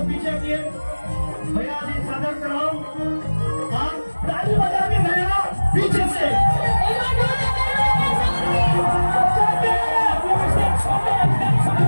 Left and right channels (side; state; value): both; inverted; correlation -1.00